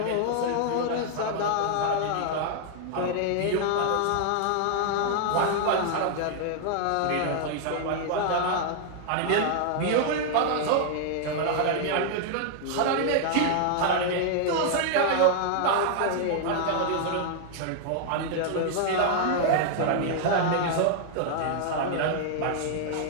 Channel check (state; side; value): different; both; correlation 0.00